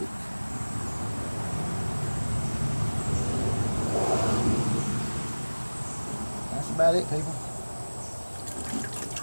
about it, people.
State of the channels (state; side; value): inverted; both; correlation -1.00